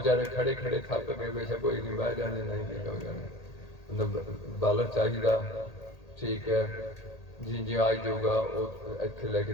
ਖੜੇ ਖੜੇ ਥੱਕ ਗਏ, ਬੇਸ਼ੱਕ ਕੋਈ ਨਹੀਂ, ਬਹਿ ਜਾਂਦੇ, ਨਹੀਂ ਹੋ ਜਾਣੇ। ਮਤਲਬ ਬਾਲਰ ਚਾਹੀਦਾ, ਠੀਕ ਹੈ ਜੀ, ਜੇ ਆ ਜਾਊਗਾ ਉਹ ਇੱਥੇ ਲੈ ਕੇ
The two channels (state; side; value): late; right; 1.8 ms